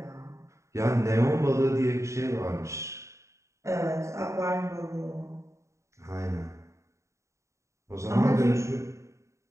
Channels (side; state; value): left; late; 0.14 ms